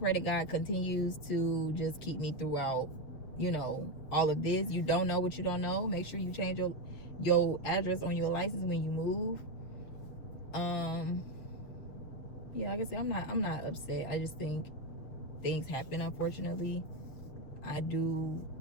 that God continues to just keep me throughout, you know, all of this. You don't know what you don't know. Make sure you change your address on your license when you move. Yeah, like I said, I'm not upset. I just think things happen, unfortunately. I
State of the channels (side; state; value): right; late; 7.5 ms